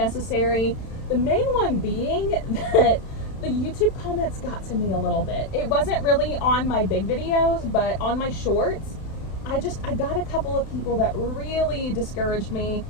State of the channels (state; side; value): late; right; 31 ms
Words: The main one being that the YouTube comments got to me a little bit. It wasn't really on my big videos, but on my shorts, I got a couple of people that really discouraged me,